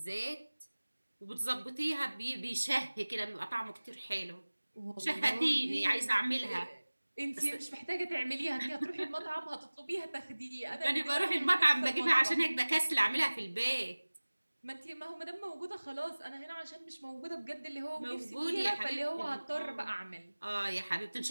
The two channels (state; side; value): inverted; both; correlation -1.00